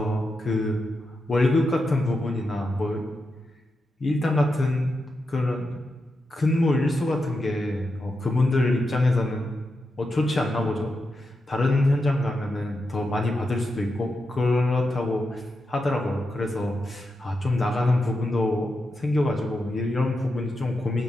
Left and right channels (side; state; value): both; normal; correlation 0.87